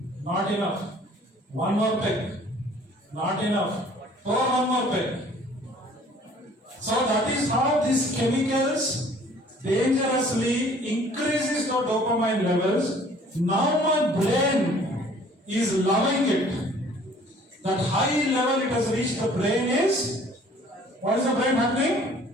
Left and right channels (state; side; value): normal; both; correlation 0.54